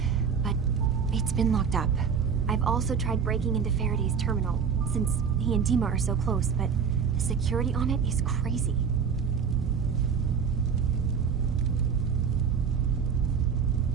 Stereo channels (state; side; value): quieter; left; 6.7 dB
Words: but it's been locked up. I've also tried breaking into Faraday's terminal, since he and Dima are so close, but the security on it is crazy.